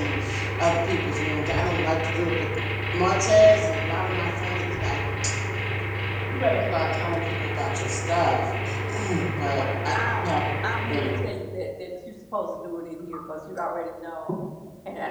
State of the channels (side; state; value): both; identical; correlation 1.00